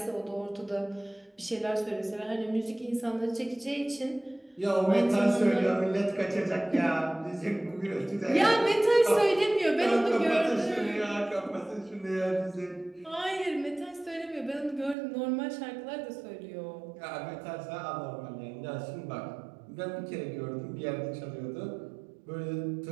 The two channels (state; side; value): drops out; left; at 15.0 s